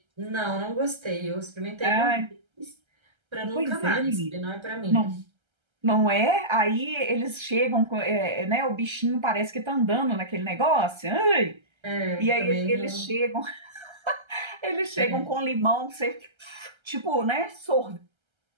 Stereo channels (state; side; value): late; left; 1.3 ms